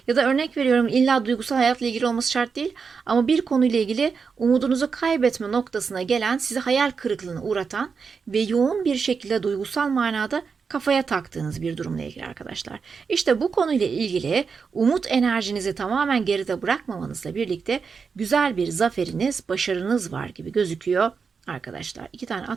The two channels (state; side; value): quieter; left; 5.5 dB